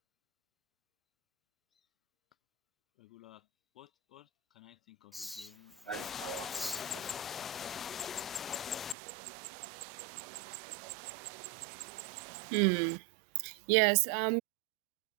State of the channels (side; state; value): left; drops out; at 9.0 s